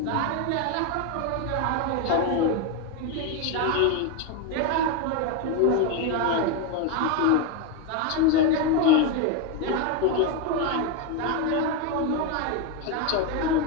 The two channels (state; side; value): different; both; correlation 0.02